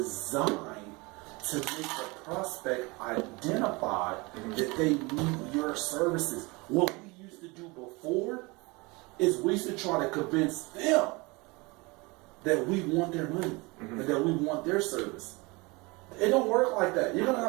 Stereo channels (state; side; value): quieter; left; 25.6 dB